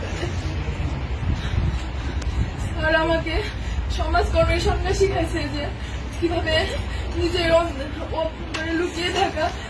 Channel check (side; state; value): both; identical; correlation 1.00